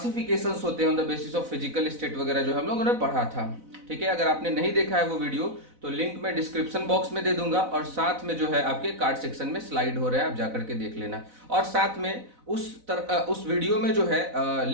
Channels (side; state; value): left; late; 4.0 ms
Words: होते हैं on the basis of physical state वगैरह जो हम लोगों ने पढ़ा था। ठीक है, अगर आपने नहीं देखा है वो वीडियो तो लिंक मैं डिस्क्रिप्शन बॉक्स में दे दूंगा, और साथ में जो है आपके कार्ड सेक्शन में स्लाइड हो रहा है, आप जाकर के देख लेना। और साथ में उस वीडियो में जो है